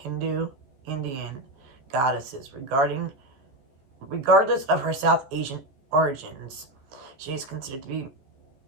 goddesses. Regardless of her South Asian origins, she is considered to be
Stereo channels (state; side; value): late; left; 15 ms